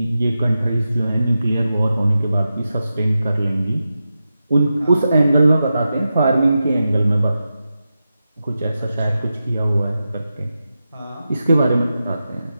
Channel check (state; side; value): inverted; both; correlation -0.91